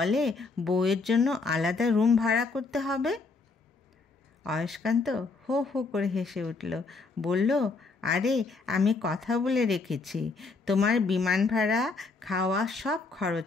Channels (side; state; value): right; quieter; 4.1 dB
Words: বউয়ের জন্য আলাদা রুম ভাড়া করতে হবে। অয়স্কান্ত হো হো করে হেসে উঠল, বলল, আরে আমি কথা বলে রেখেছি, তোমার বিমান ভাড়া, খাওয়া সব